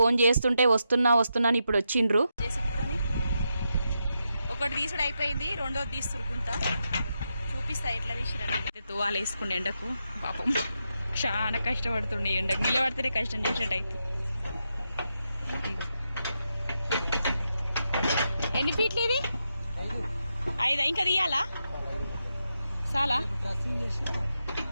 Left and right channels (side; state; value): both; inverted; correlation -0.85